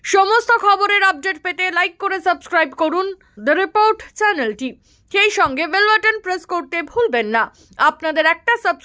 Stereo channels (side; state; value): both; identical; correlation 1.00